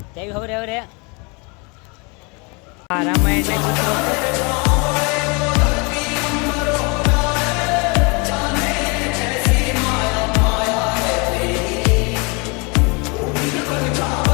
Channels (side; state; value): right; quieter; 30.7 dB